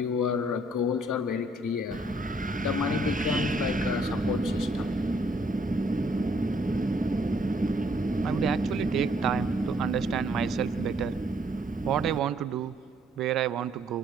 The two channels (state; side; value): normal; both; correlation 0.66